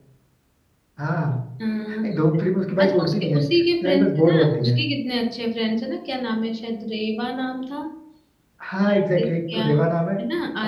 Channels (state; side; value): identical; both; correlation 1.00